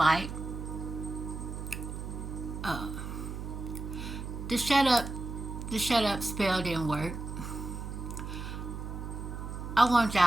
Uh, the shut up spell didn't work. I want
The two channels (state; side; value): noise; right; hum, 7 dB below the sound